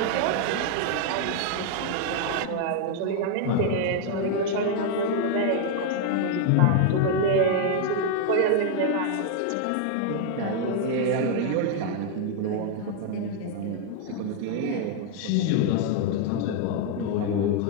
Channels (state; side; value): different; both; correlation 0.00